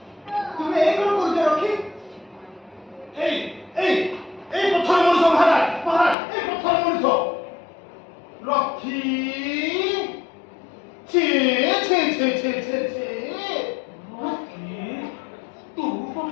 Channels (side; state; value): right; drops out; at 6.2 s